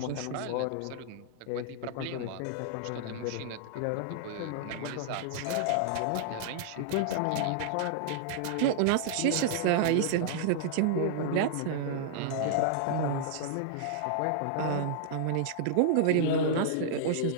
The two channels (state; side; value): different; both; correlation -0.01